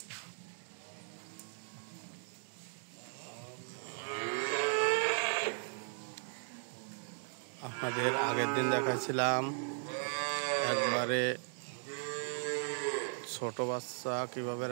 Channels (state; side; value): silent; left; 53 dB below the other